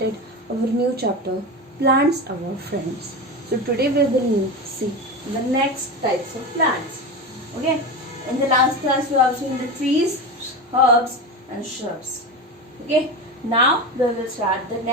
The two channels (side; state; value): both; normal; correlation 0.22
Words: our new chapter, Plants Our Friends. So today we will see the next types of plants. Okay. In the last class we have seen the trees, herbs and shrubs. Okay. Now we will start the